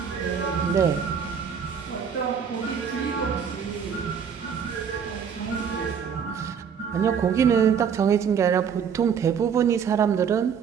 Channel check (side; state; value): left; quieter; 7.2 dB